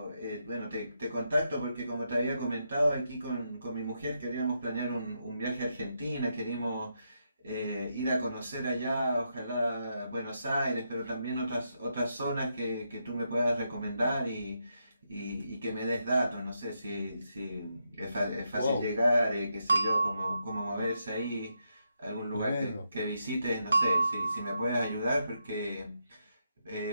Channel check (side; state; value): both; inverted; correlation -0.82